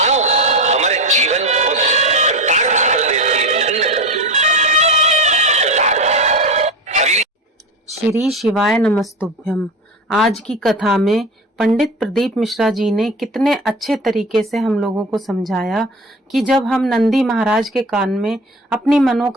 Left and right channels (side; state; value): both; normal; correlation 0.27